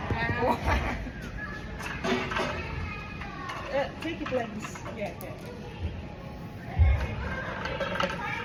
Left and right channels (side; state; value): both; identical; correlation 1.00